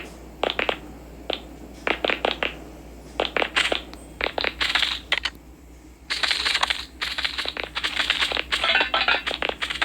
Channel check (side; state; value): both; identical; correlation 1.00